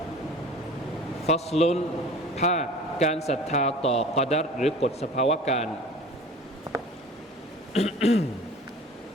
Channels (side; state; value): both; normal; correlation 0.42